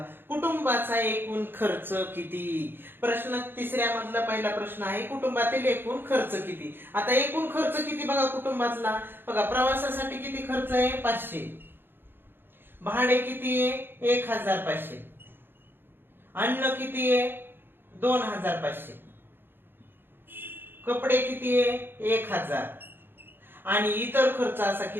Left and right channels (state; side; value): late; left; 0.10 ms